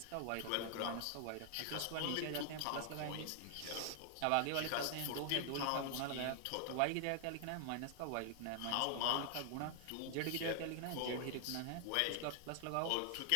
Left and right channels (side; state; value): both; different; correlation 0.00